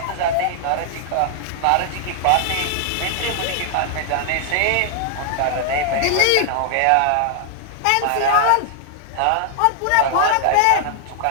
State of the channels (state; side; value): different; both; correlation 0.00